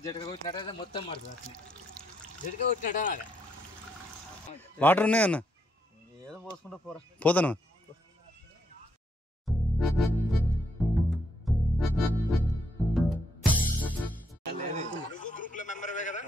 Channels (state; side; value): normal; both; correlation 0.76